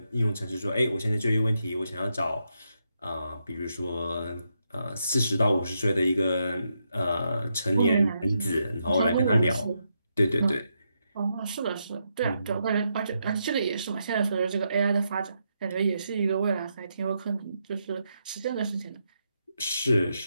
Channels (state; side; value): inverted; both; correlation -0.82